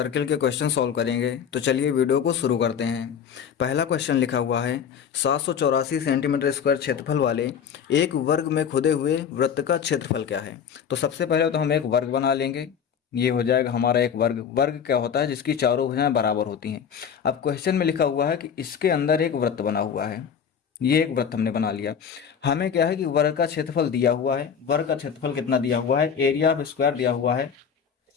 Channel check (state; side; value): quieter; right; 7.5 dB